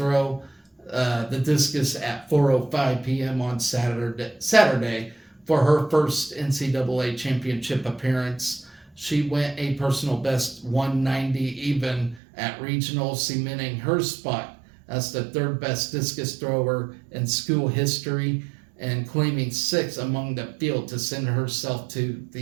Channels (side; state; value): left; drops out; at 12.2 s